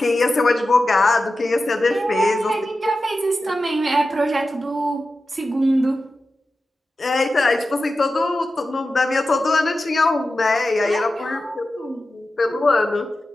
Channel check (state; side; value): normal; both; correlation 0.92